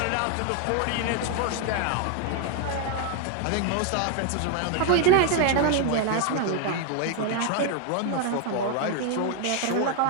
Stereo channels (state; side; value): different; both; correlation 0.00